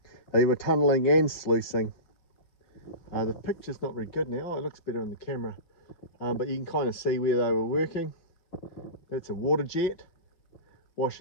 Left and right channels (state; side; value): late; right; 5.4 ms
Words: they were tunnelling and sluicing. The picture's not very good now. It looks better on the camera, but you can kind of see where they were working. That's a water jet